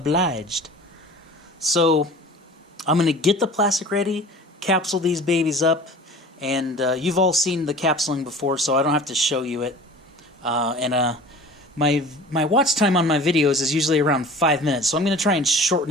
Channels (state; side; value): normal; both; correlation 0.41